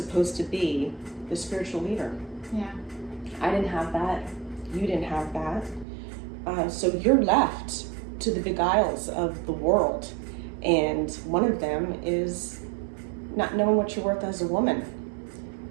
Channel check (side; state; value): left; drops out; at 5.9 s